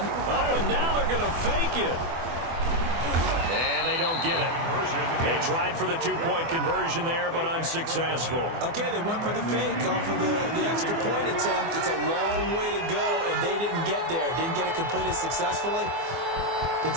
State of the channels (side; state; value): left; late; 24 ms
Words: Oh, and now they're going to fake it. And they don't get it. They tried for the two-point conversion there, but unsuccessful. Okay, they went for the fake off of the extra point attempt. It's a long way to go, and they didn't get there. Didn't get it completed successfully. Did